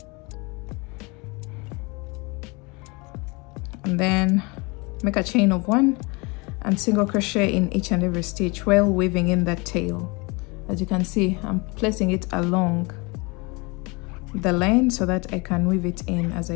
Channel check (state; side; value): quieter; right; 27.7 dB